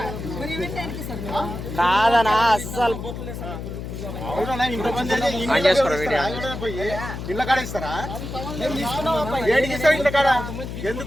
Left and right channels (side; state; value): left; noise; hum, 7 dB below the sound